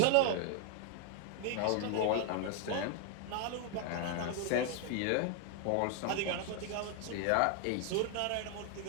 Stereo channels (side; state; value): both; different; correlation 0.00